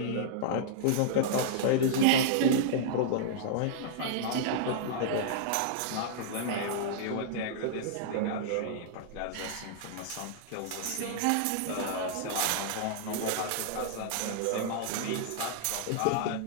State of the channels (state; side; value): different; both; correlation -0.01